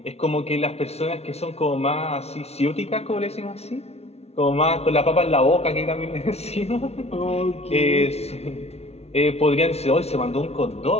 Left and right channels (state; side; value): late; right; 0.31 ms